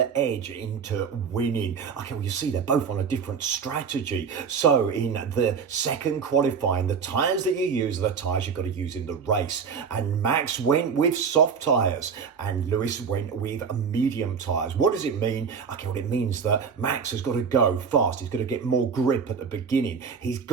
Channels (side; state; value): left; quieter; 6.2 dB